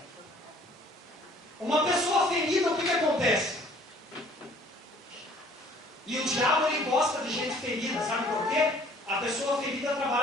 Uma pessoa ferida, o que acontece? E o diabo, ele gosta de gente ferida, sabe por quê? A pessoa ferida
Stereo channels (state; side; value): normal; both; correlation 0.56